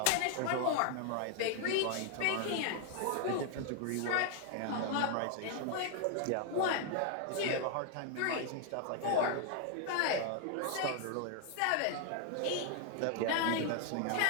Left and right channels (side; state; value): both; different; correlation 0.00